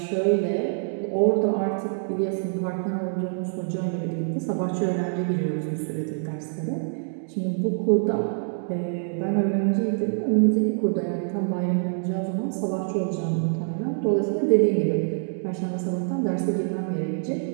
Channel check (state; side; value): silent; left; digital silence